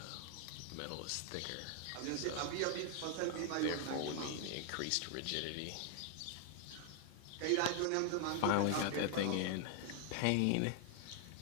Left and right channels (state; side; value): different; both; correlation 0.00